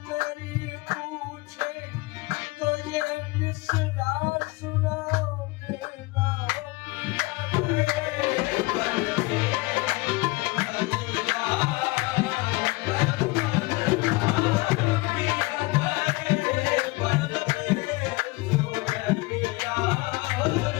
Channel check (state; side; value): quieter; right; 23.5 dB